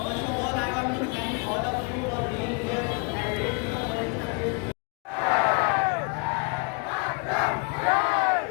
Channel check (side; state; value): right; quieter; 33.0 dB